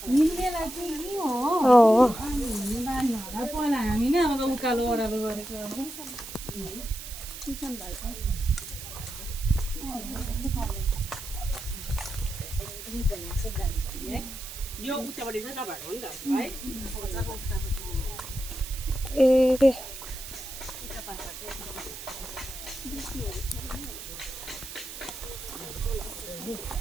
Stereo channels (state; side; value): noise; right; hiss, 11 dB below the sound